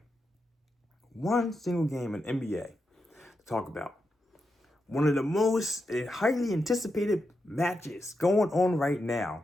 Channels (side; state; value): both; normal; correlation 0.86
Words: in NBA to talk about. One of the most highly anticipated matches going on right now.